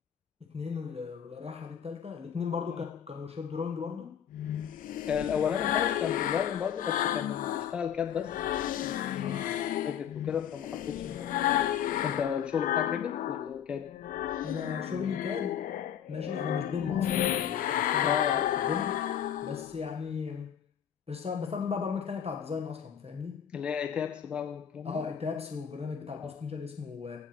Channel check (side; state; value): right; quieter; 8.8 dB